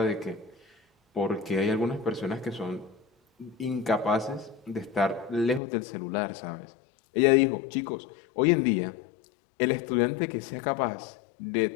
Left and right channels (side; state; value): right; drops out; at 5.6 s